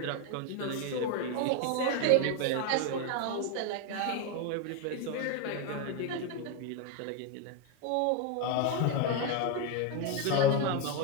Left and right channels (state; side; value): different; both; correlation 0.02